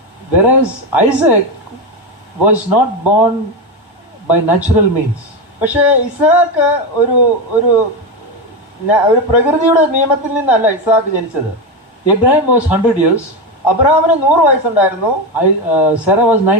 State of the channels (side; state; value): both; normal; correlation 0.14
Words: whereas Isaac was not born by natural means. പക്ഷേ ഇസ്ഹാക്ക് ഒരു പ്രകൃതിയുടെ നിയമത്തിൽ നിന്നല്ല ഇസ്ഹാക്ക് ജനിച്ചത്. Abraham was 100 years. അബ്രഹാമിന് 100 വയസ്സുണ്ടായിരുന്നു. Sarah was